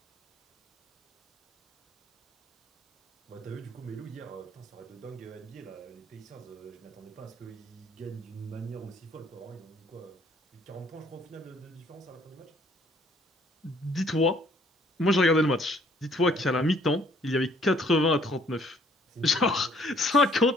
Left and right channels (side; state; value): both; normal; correlation 0.62